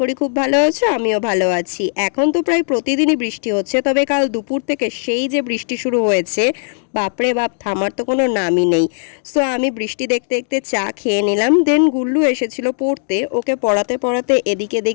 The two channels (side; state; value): right; silent; digital silence